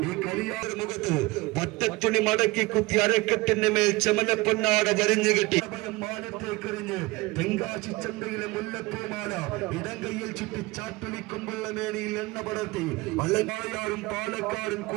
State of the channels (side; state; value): left; quieter; 22.1 dB